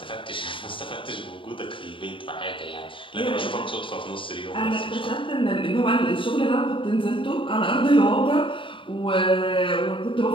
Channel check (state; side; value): late; right; 0.25 ms